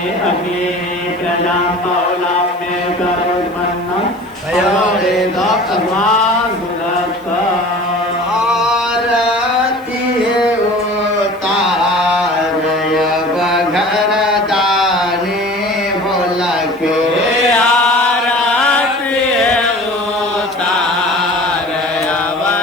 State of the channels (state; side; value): noise; right; hiss, 27 dB below the sound